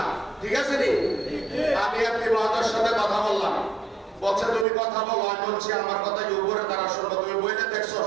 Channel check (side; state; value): left; drops out; at 4.7 s